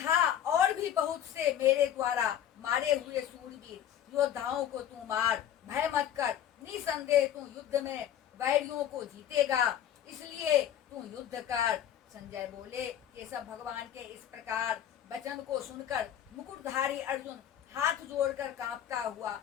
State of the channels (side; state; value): right; quieter; 10.4 dB